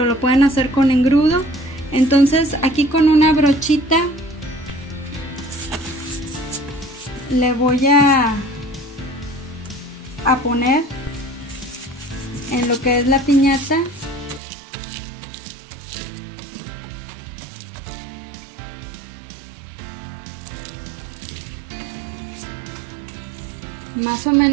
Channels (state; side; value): drops out; left; at 14.4 s